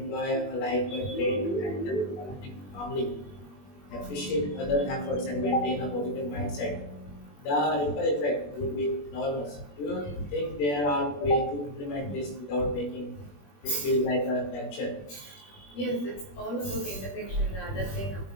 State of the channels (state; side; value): late; right; 21 ms